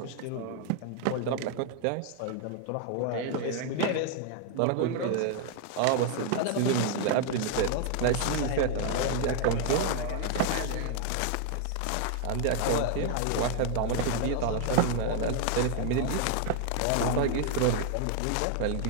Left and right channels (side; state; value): both; different; correlation 0.00